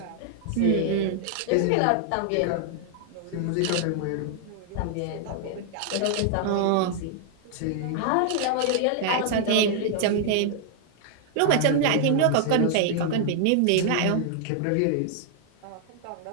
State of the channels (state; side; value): different; both; correlation 0.00